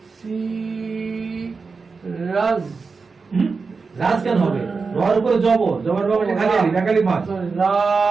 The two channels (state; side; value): quieter; left; 4.6 dB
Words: সি রাজ রাজ কেন হবে রর উপরে জবর জবর বাবা খালি আলি একালি মাছ রা